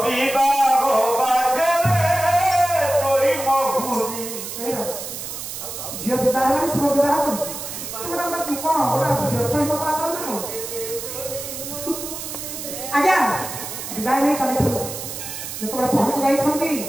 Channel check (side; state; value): right; noise; hiss, 8 dB below the sound